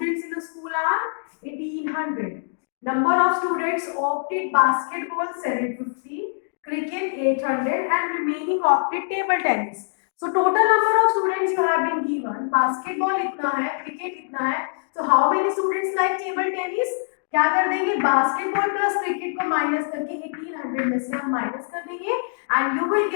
in a school are 1800. Number of students opted basketball 750, cricket 800 and remaining opted table tennis. So total number of students you have been given. Basketball इतना है, cricket इतना है. So how many students like table tennis? क्या कर देंगे, basketball plus cricket को minus करके 1800 में से हम माइनस कर देंगे and you will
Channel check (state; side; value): silent; right; digital silence